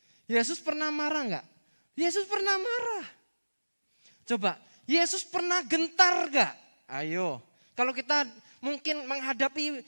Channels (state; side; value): inverted; both; correlation -1.00